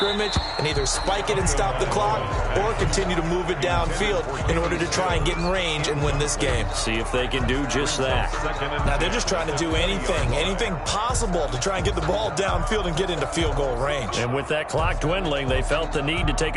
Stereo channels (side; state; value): both; identical; correlation 1.00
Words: and either spike it and stop the clock or continue to move it downfield in order to try and get in range and win this game. See if they can do just that. Now, they're just trying to do anything possible to try and get the ball downfield and get into field goal range. And with that clock dwindling, they felt the need to take